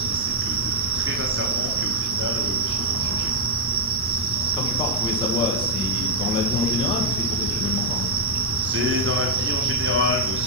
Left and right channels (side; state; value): both; normal; correlation -0.05